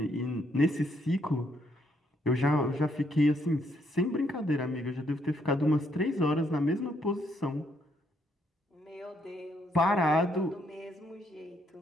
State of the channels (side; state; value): both; normal; correlation 0.73